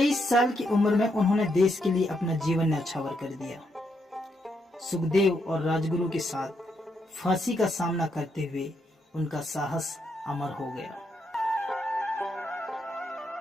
साल की उम्र में उन्होंने देश के लिए अपना जीवन न्यौछावर कर दिया। सुखदेव और राजगुरु के साथ फांसी का सामना करते हुए उनका साहस अमर हो गया।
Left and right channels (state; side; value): normal; both; correlation 0.79